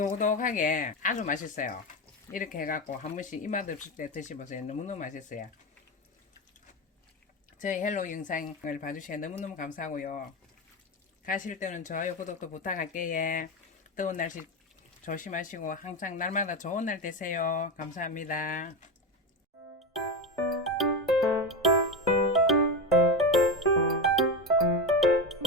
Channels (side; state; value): both; normal; correlation 0.17